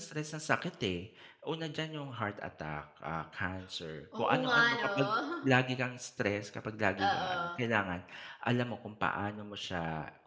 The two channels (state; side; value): identical; both; correlation 1.00